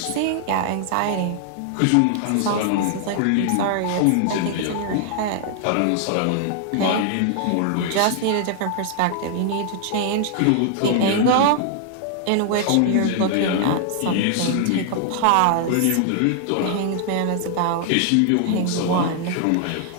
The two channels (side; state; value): both; different; correlation 0.00